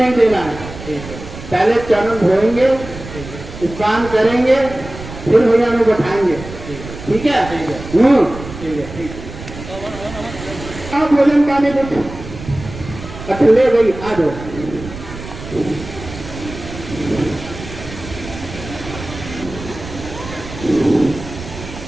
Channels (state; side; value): noise; right; rumble, 12 dB below the sound